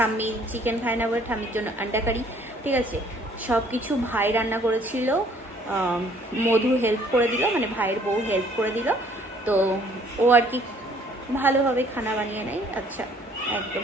চিকেন খায় না বলে ঠাম্মির জন্য আন্ডা কারি। ঠিক আছে, সব কিছু ভাই রান্না করেছিল, মধু হেল্প করে দিল, মানে ভাইয়ের বউ হেল্প করে দিল। তো ও আর কি ভালোভাবে খানা বানিয়ে নেয়। আচ্ছা,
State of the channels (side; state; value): both; normal; correlation 0.59